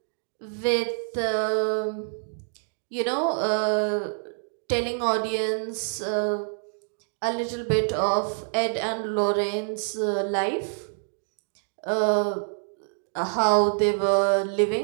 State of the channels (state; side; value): silent; left; digital silence